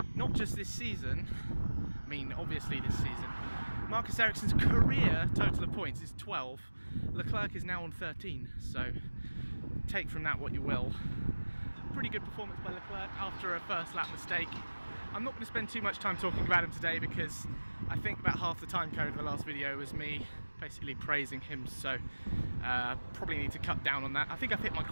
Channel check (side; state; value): both; inverted; correlation -1.00